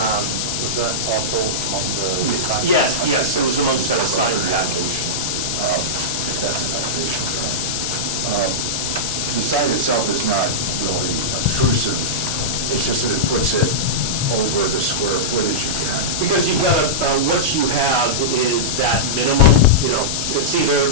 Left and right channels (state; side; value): noise; left; hiss, 1 dB below the sound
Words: Was that also on the sign? Yes, it was amongst that sign package. If that's an elevation drawing. the sign itself is not really obtrusive, it's just that it puts it over the square footage again. Because you've got what you have is that minimum, it's